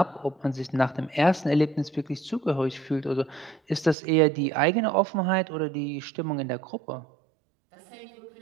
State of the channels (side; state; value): left; drops out; at 4.0 s